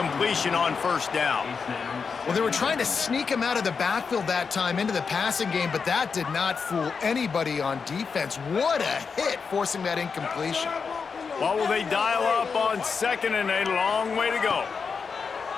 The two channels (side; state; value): right; quieter; 5.5 dB